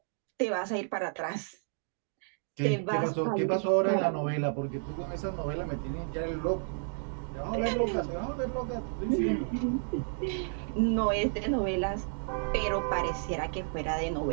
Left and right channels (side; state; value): left; silent; digital silence